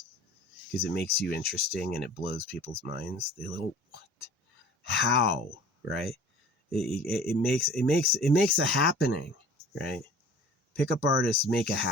because it makes you interesting and it blows people's minds. They go, what? How? Right? It makes a happening, right? Pickup artists make a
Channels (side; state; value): both; normal; correlation 0.45